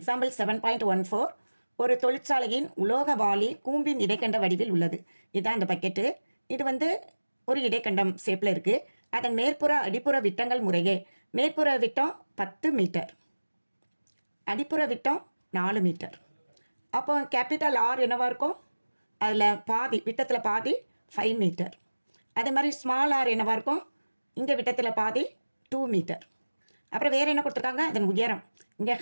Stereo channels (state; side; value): inverted; both; correlation -1.00